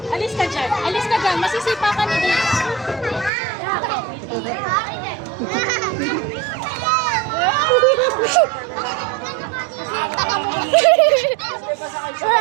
Alis ka dyan. Alis ka dyan. Masisipa ka na dito.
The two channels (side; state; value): left; drops out; at 3.3 s